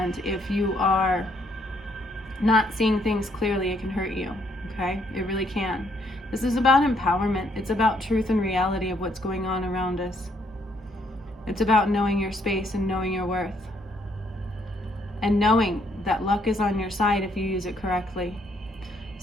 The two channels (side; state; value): both; normal; correlation 0.70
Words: if you are not seeing things clearly, it can hurt you, okay? It really can. This is about empowerment. It's about truth and reality of what's going on around us. It's about knowing your space and knowing your worth. And knowing that luck is on your side if you use it correctly.